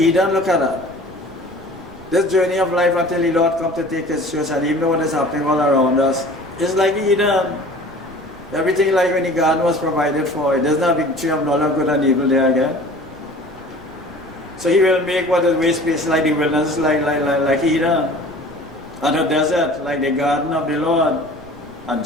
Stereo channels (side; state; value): right; noise; rumble, 21 dB below the sound